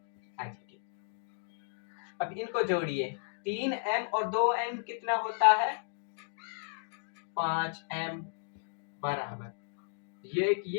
एज। अब इनको जोड़िए, 3m और 2m कितना होता है, 5m बराबर, ये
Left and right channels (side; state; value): right; silent; digital silence